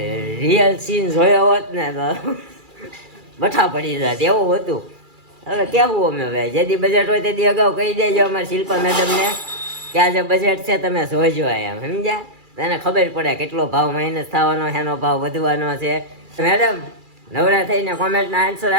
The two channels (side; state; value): left; late; 2.4 ms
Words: સીન જોયો હોત ને તો બઠા પડી જાત એવું હતું હવે કેવું અમે હવે જેથી બજેટ હોય તેથી અગાઉ કહી દેજો અમારા શિલ્પા મેડમને કે આજે બજેટ છે તમે જોજો એમ સમજ્યા તને ખબર પડે કેટલો ભાવ માઇનસ થવાનો એનો ભાવ વધવાનો છે મેડમ નવરા થઈને કોમેન્ટના આન્સર